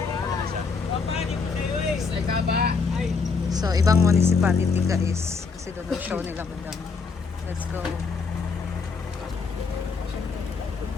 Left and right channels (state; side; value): quieter; right; 4.9 dB